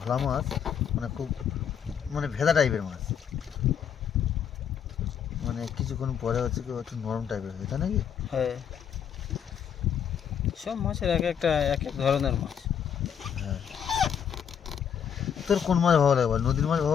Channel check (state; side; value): quieter; right; 8.2 dB